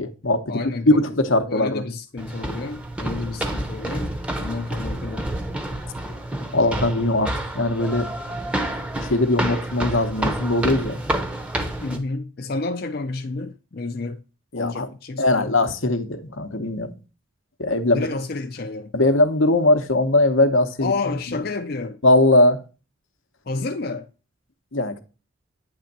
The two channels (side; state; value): both; normal; correlation -0.07